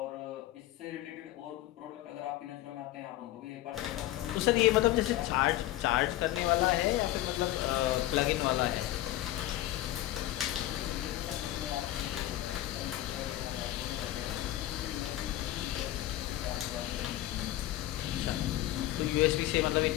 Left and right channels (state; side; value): quieter; right; 15.0 dB